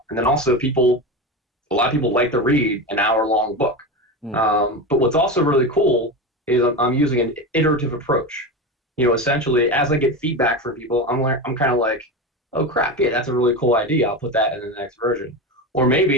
and then also a lot of people like to read an hour-long book. Mm, But what's also really cool is I'm using an iterative approach. Essentially, as I get feedback from people, I'm kind of like, oh crap, yeah, that's a really cool idea. I'll put that in the next version. Or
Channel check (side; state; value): both; normal; correlation 0.22